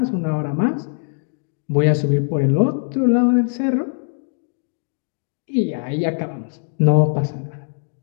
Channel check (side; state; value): right; silent; digital silence